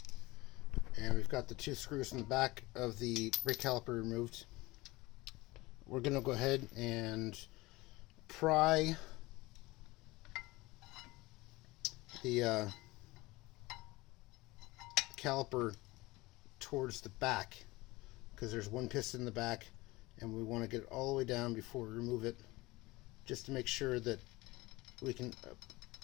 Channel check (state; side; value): quieter; right; 21.1 dB